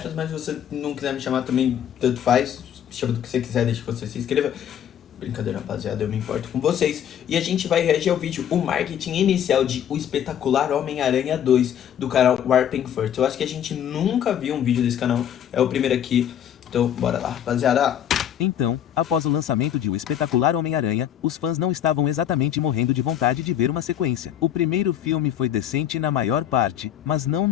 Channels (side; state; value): right; quieter; 9.9 dB